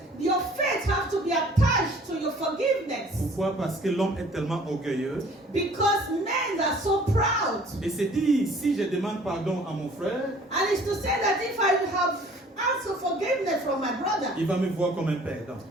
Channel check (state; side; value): normal; both; correlation 0.53